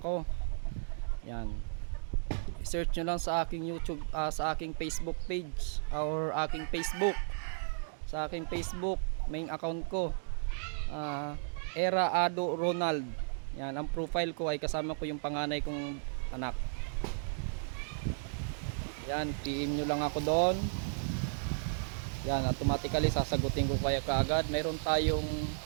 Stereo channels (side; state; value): left; silent; digital silence